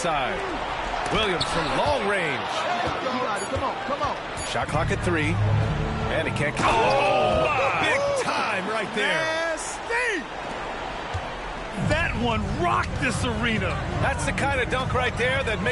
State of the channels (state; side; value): identical; both; correlation 1.00